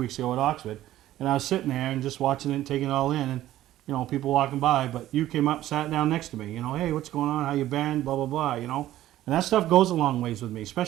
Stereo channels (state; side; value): quieter; left; 14.0 dB